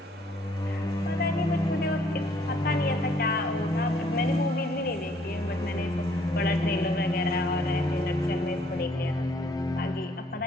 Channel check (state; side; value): normal; both; correlation 0.64